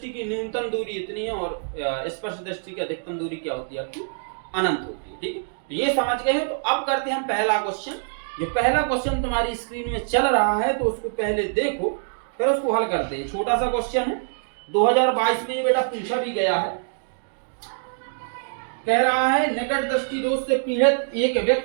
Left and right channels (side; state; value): left; silent; digital silence